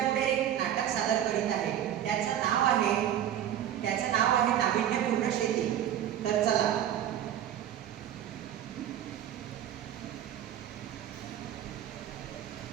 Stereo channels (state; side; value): quieter; left; 10.9 dB